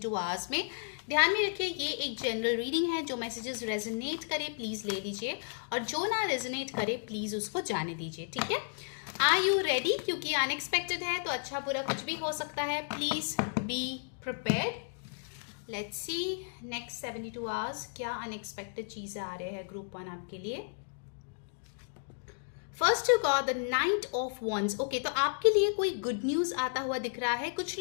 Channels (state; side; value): silent; right; digital silence